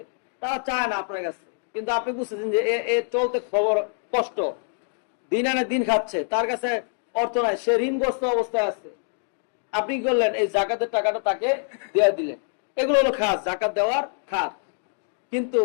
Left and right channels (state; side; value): silent; right; 59 dB below the other